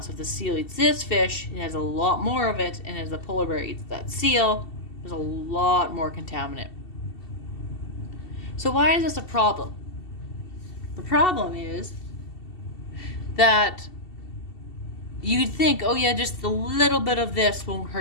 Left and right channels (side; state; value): right; late; 2.7 ms